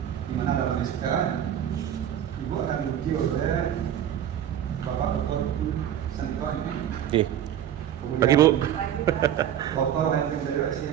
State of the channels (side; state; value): left; quieter; 10.3 dB